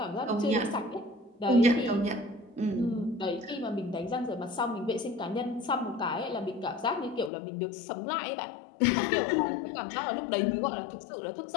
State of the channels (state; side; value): drops out; right; at 7.3 s